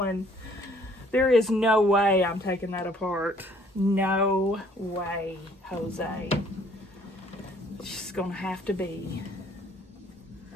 There is no way I'm taking that apart. No way, Jose. It's just gonna have to be.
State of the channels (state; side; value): normal; both; correlation 0.60